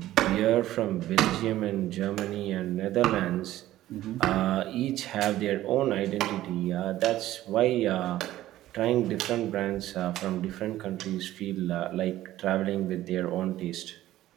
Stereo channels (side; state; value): left; quieter; 14.5 dB